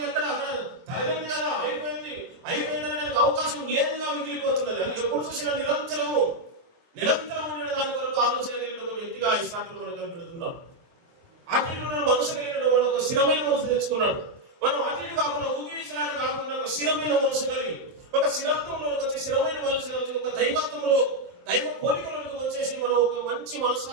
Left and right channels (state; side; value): late; left; 23 ms